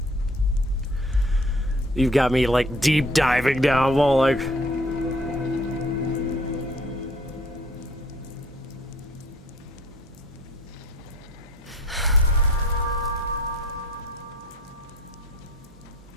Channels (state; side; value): normal; both; correlation 0.55